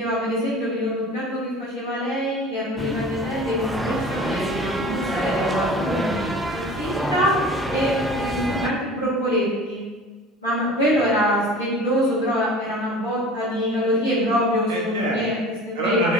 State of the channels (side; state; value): both; normal; correlation 0.40